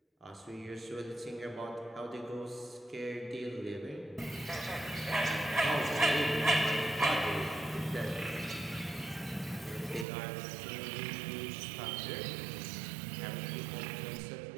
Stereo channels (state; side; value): drops out; left; at 10.1 s